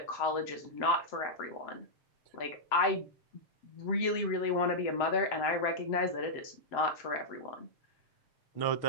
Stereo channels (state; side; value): late; right; 7.7 ms